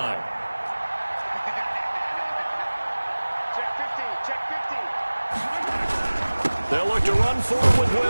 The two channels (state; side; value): inverted; both; correlation -1.00